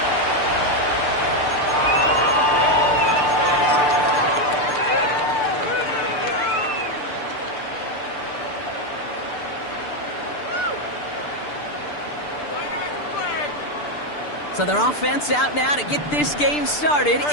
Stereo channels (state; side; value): late; right; 6.8 ms